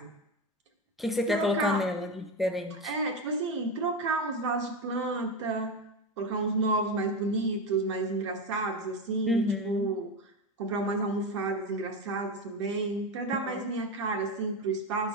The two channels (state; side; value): normal; both; correlation 0.17